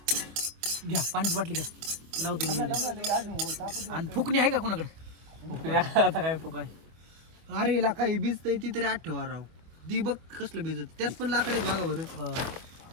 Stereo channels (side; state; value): left; late; 25 ms